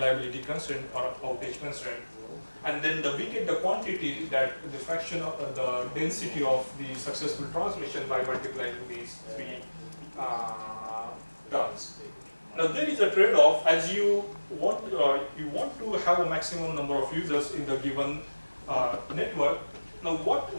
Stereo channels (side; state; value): both; inverted; correlation -1.00